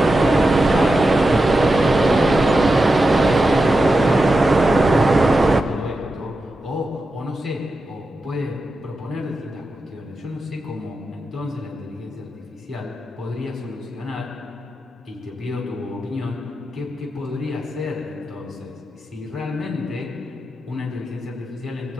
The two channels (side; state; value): both; normal; correlation 0.90